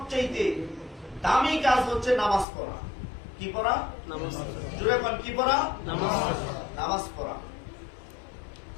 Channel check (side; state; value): right; drops out; at 2.5 s